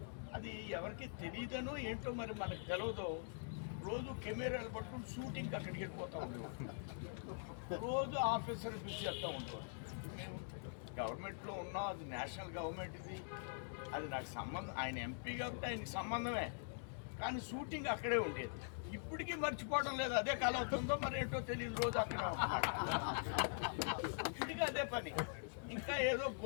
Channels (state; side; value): silent; right; digital silence